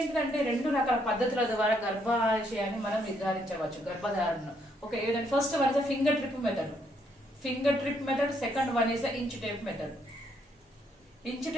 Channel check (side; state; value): both; normal; correlation 0.72